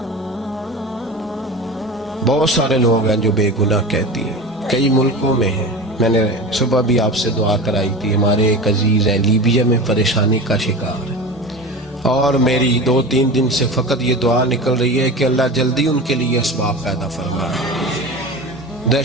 بہت سارے لوگ ہیں جو بے گناہ کہتی ہیں، کئی ملکوں میں ہیں۔ میں نے صبح بھی آپ سے دعا کرائی تھی، ہمارے ایک عزیز ہیں لیبیا میں پریشانی کا شکار ہے، اور میری 2-3 دن سے فقط یہ دعا نکل رہی ہے کہ اللہ جلدی ان کے لیے اسباب پیدا فرمائے۔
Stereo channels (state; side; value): normal; both; correlation 0.30